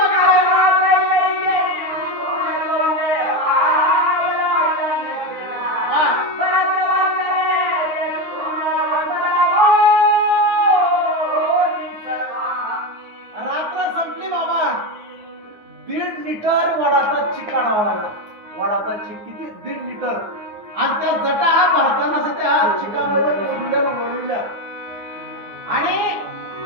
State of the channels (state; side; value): late; left; 9.7 ms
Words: दीड लिटर वडाचा चिक काढावा लागला. वडाचा चिक किती? 1.5 लिटर. आणि त्या जटा भरताना त्या चिकामध्ये वळविल्या आणि